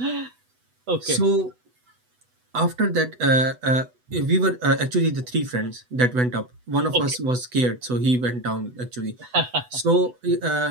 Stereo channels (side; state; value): left; late; 8.1 ms